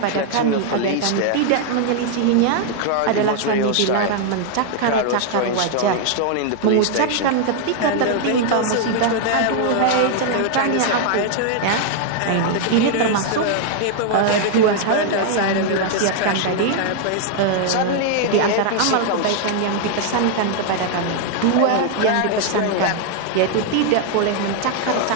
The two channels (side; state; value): both; different; correlation 0.00